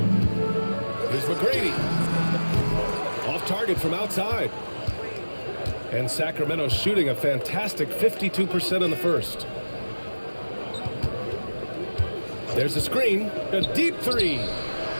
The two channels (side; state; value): both; inverted; correlation -1.00